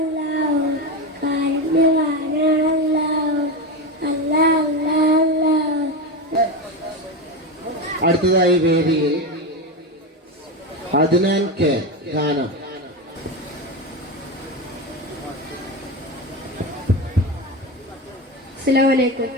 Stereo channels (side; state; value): both; normal; correlation 0.17